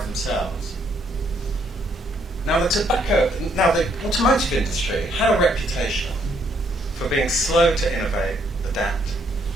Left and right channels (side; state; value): both; normal; correlation 0.70